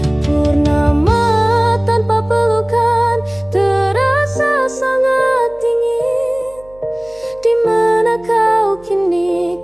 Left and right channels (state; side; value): noise; right; hum, 26 dB below the sound